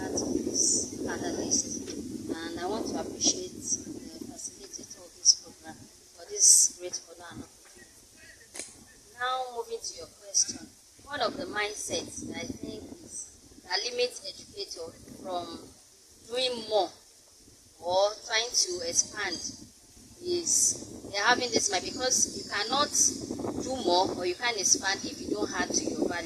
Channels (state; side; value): identical; both; correlation 1.00